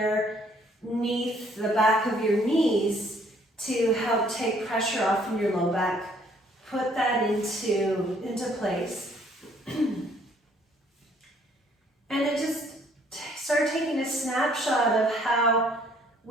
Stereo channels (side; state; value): both; normal; correlation 0.63